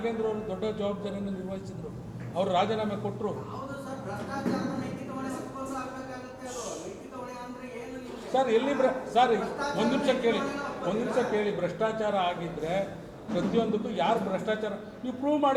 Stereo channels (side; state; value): both; identical; correlation 1.00